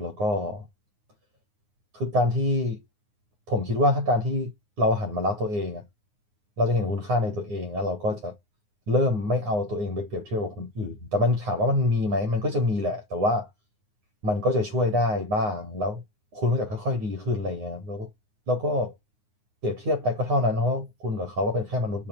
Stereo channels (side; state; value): left; late; 9.6 ms